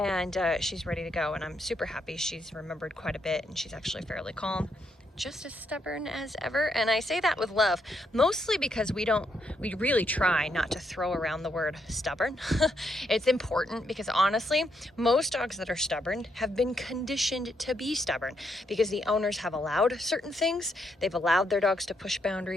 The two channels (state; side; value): normal; both; correlation 0.78